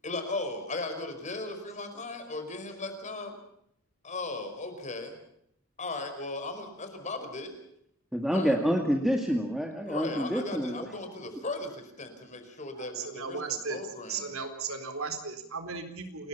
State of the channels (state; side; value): normal; both; correlation 0.52